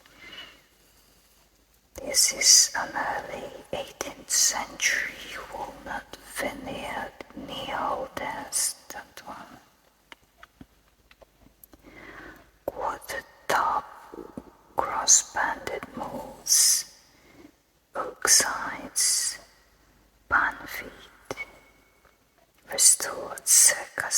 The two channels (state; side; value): identical; both; correlation 1.00